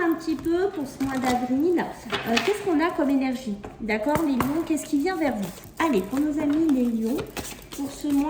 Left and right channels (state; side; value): identical; both; correlation 1.00